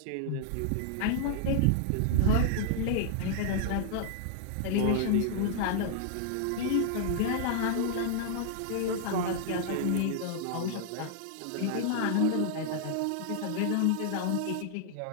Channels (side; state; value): both; different; correlation 0.00